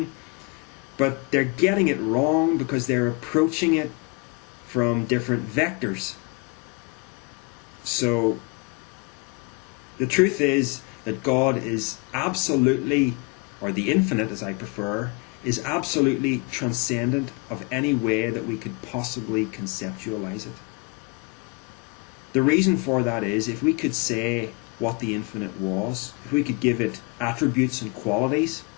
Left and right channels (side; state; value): right; quieter; 29.4 dB